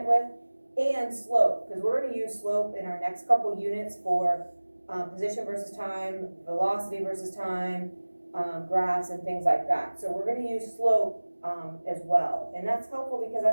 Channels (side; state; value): both; inverted; correlation -1.00